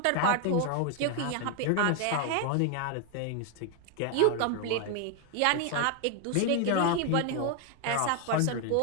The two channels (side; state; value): both; different; correlation 0.01